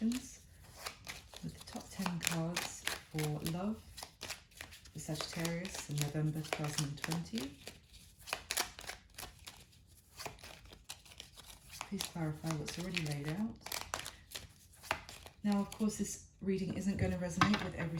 with the top 10 cards for love for Sagittarius in November 2020. Please clarify what's already laid out. Now, of course, this reading isn't going to resonate with every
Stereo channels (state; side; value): identical; both; correlation 1.00